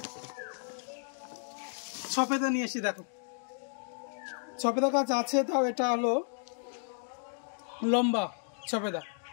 সফেদা নিয়ে এসেছি, দেখো সফেদা গাছ আছে, তাও এটা হলো লম্বা সফেদা,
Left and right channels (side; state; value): right; silent; digital silence